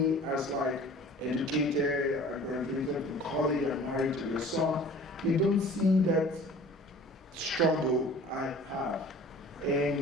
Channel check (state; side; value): normal; both; correlation 0.46